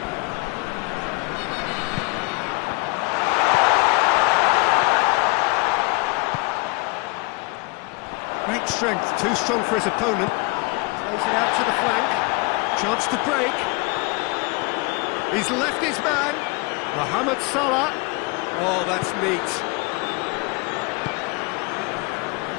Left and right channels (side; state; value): right; quieter; 28.2 dB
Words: Great strength, too strong for his opponent. Plays it out to the flank. Chance to break. He's left his man. Mohamed Salah. Oh, that's neat.